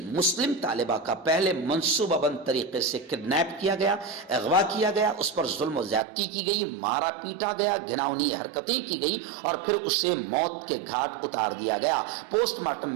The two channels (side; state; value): left; drops out; at 6.0 s